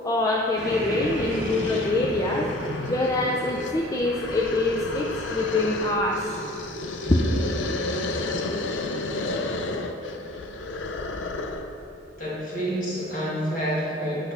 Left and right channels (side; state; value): both; normal; correlation 0.47